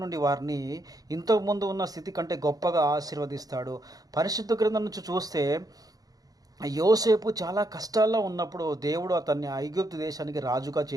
నుండి వారిని ఇంతకుముందు ఉన్న స్థితి కంటే గొప్పగా ఆశీర్వదిస్తాడు. పరిశుద్ధ గ్రంథం నుంచి చూస్తే యోసేపు చాలా కష్టాల్లో ఉన్నప్పుడు దేవుడు అతన్ని ఐగుప్తు దేశానికి రాజుగా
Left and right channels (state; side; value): late; left; 0.18 ms